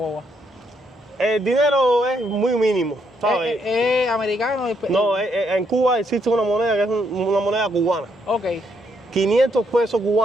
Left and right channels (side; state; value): both; normal; correlation 0.74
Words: El dinero es muy mínimo, ¿sabes? ¿Es americano? No, en Cuba existe una moneda que es una moneda cubana. Ok. 500 pesos